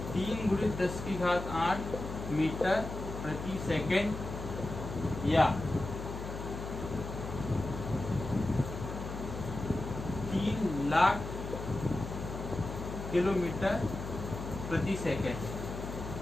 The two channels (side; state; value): left; noise; hum, 7 dB below the sound